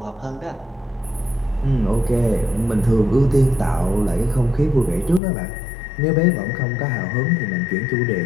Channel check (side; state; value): right; drops out; at 5.2 s